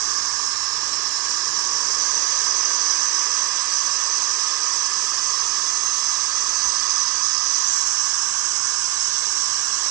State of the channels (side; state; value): left; quieter; 19.4 dB